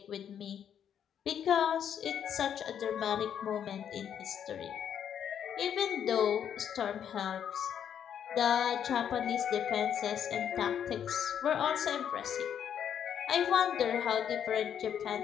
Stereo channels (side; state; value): right; quieter; 8.9 dB